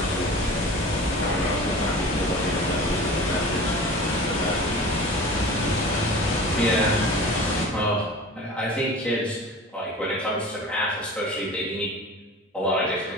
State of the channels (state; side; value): normal; both; correlation 0.38